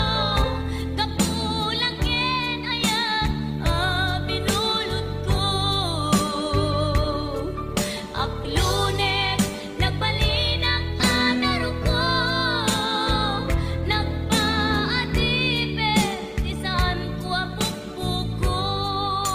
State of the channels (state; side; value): identical; both; correlation 1.00